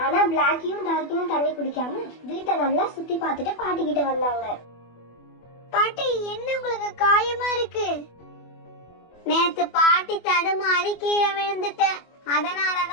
ஆனா பிளாக்கியும் டார்க்கியும் தண்ணி குடிக்காம வீட்டை நல்லா சுத்தி பார்த்துட்டு பாட்டி கிட்ட வந்தாங்க. பாட்டி, என்ன உங்களுக்கு காயமா இருக்கு? நேத்து பாட்டி தடுமாறி கீழே விழுந்துட்டேன்,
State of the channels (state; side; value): late; right; 24 ms